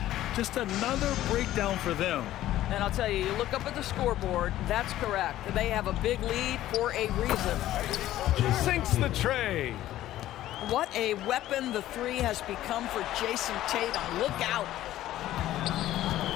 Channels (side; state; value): right; quieter; 13.9 dB